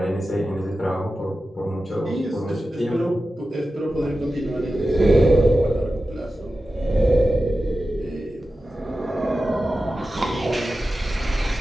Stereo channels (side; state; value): both; normal; correlation 0.93